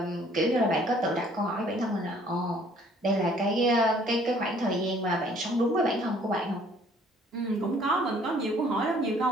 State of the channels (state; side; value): normal; both; correlation 0.58